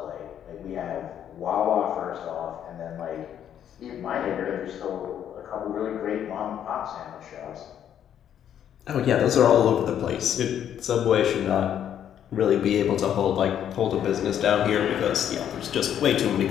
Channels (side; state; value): right; quieter; 9.7 dB